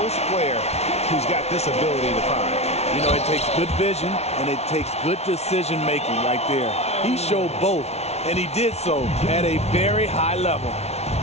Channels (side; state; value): right; late; 0.31 ms